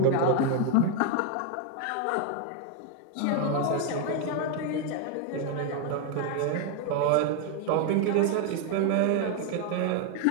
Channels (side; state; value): both; different; correlation 0.01